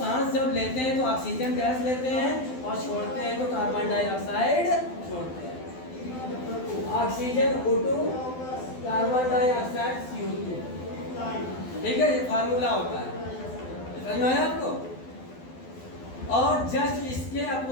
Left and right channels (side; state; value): right; late; 12 ms